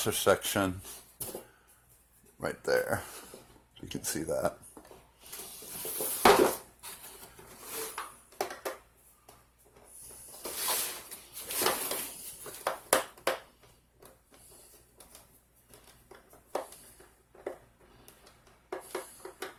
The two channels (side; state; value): both; identical; correlation 1.00